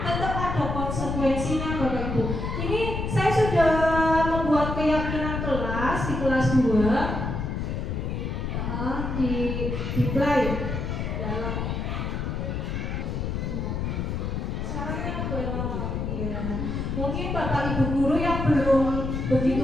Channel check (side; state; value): left; noise; rumble, 2 dB below the sound